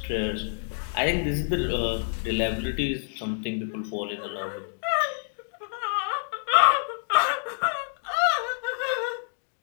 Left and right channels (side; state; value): right; silent; digital silence